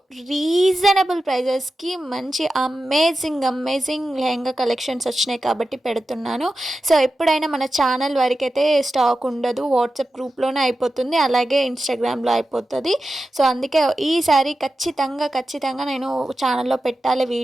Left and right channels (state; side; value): normal; both; correlation 0.92